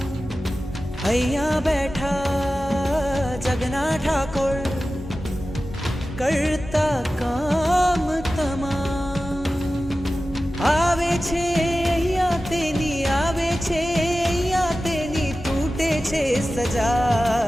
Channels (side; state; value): both; normal; correlation 0.95